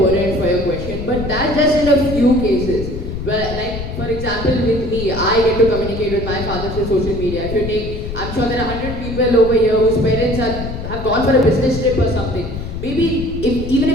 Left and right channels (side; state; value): left; noise; rumble, 7 dB below the sound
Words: for your question, but that's just in a few cases. Well, like, for example, with me, I get to communicate with my father through social media. If you take, I'm sure there are 100 people over here whose parents have gone for a business trip or something. Maybe, even